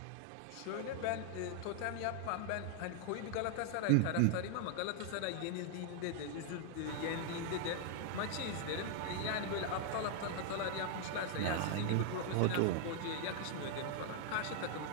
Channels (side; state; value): both; different; correlation 0.00